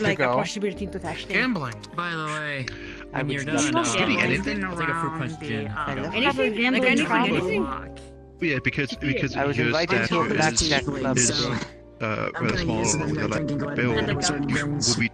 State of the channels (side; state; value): both; identical; correlation 1.00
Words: like a possibility to touch them? Gambling. By the way, I when would you're love done, to Getting anything? I'll take a fruit punch gin. Anything? Like anything? Yeah, because I was your invited to a stature blackjack club. is rather small along with like bill.